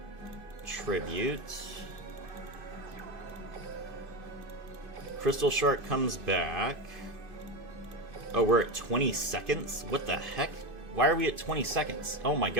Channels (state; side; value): late; left; 2.5 ms